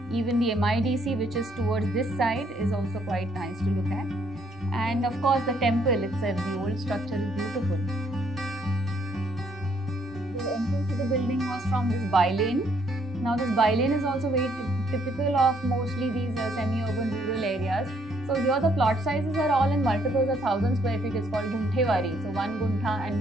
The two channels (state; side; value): normal; both; correlation 0.68